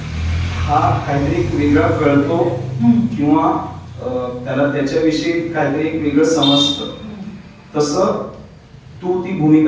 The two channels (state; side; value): identical; both; correlation 1.00